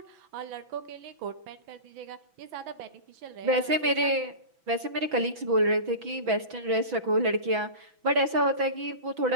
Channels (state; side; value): late; left; 6.1 ms